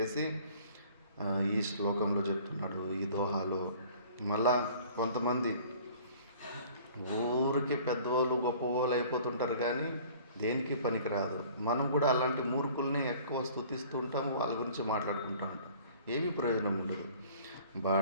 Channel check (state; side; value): inverted; both; correlation -0.50